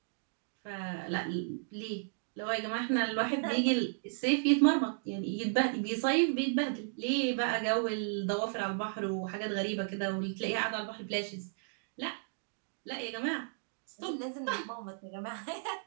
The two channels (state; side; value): silent; left; digital silence